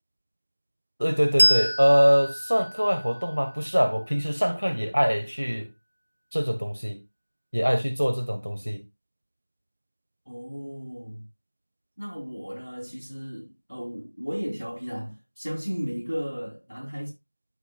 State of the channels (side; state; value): both; inverted; correlation -1.00